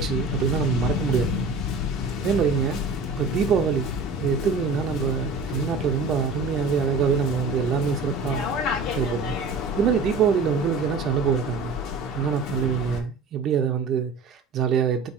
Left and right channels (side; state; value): left; quieter; 3.8 dB